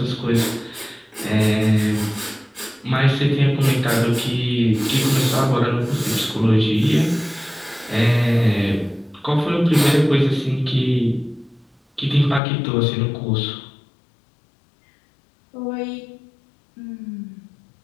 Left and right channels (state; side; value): drops out; right; at 12.4 s